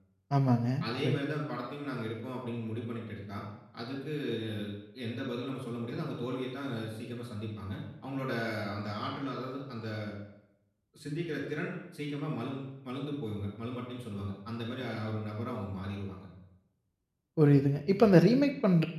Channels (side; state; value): both; identical; correlation 1.00